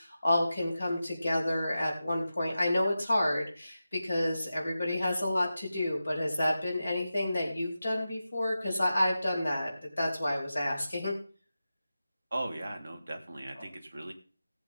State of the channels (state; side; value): inverted; both; correlation -0.92